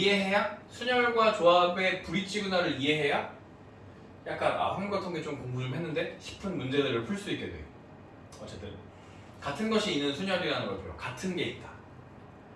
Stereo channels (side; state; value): both; identical; correlation 1.00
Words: 순열과 조합의 브릿지구나를 이해해야 약간 확률과 통계 좀 공부 좀 했는데 싶은 문제들을 풀 수 있게 돼요. 어쨌든 같은 것이 있는 순열이라는 걸 배워. 같은 게 있다.